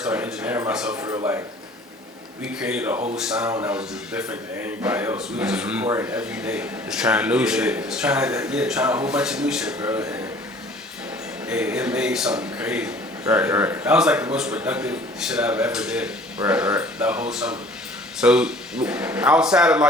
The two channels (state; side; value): normal; both; correlation 0.50